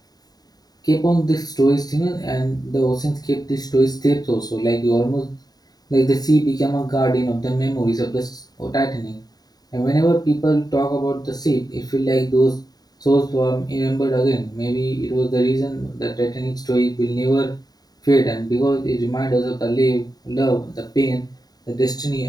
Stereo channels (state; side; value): late; right; 0.19 ms